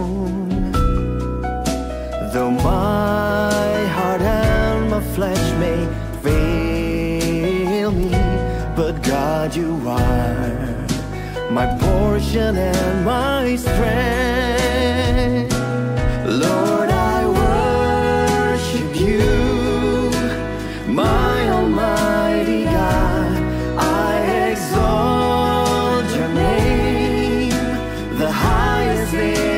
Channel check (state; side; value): identical; both; correlation 1.00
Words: Though my heart and my flesh may fail me, but God, you are my portion and my strength. Lord, I worship you, my Almighty God. I exalt your name, the highest